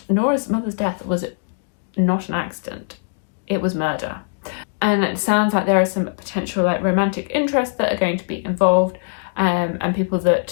Nora's mother's death was not an accident, it was murder. And it sounds like there is some potential like romantic interests that are going to be involved, and people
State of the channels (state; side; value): silent; right; digital silence